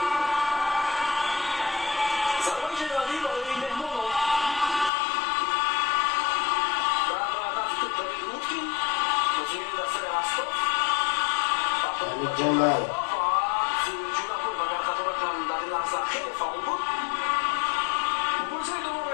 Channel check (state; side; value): drops out; right; at 4.9 s